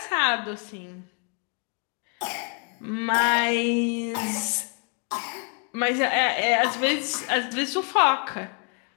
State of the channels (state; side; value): quieter; right; 39.2 dB